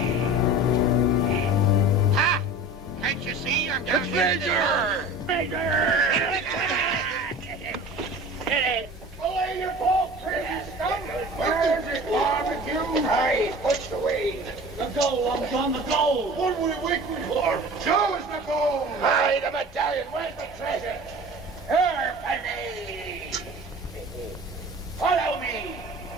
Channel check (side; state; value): both; normal; correlation 0.39